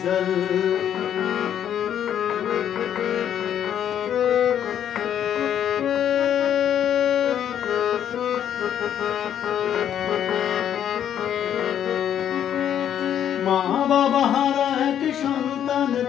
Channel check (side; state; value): right; quieter; 9.8 dB